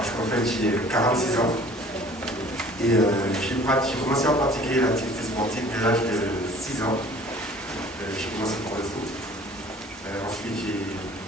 qu'en fait, j'ai 46 ans. Et j'ai commencé à pratiquer l'activité sportive dès l'âge de 6 ans. J'ai commencé par le foot. Ensuite, j'ai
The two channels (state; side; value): normal; both; correlation 0.50